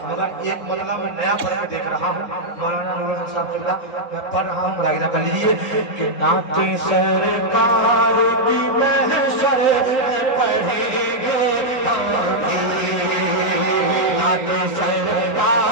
मगर एक मसला मैं नया पढ़ के देख रहा हूँ, मौलाना नूरुल साहब चिल्ला मैं पढ़ रहा हूँ, मुलाहिजा कर लीजिए कि नाते सरकार की महशर में पढ़ेंगे हम भी, नाते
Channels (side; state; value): right; late; 4.1 ms